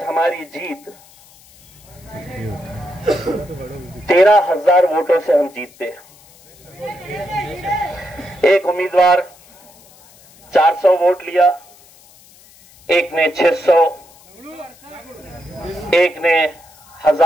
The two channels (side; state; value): left; noise; hiss, 26 dB below the sound